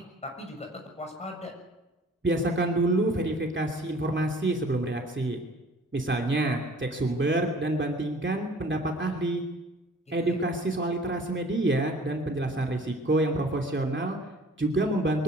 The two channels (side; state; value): both; normal; correlation 0.50